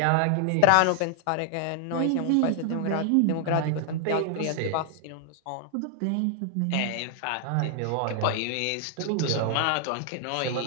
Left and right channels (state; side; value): different; both; correlation 0.00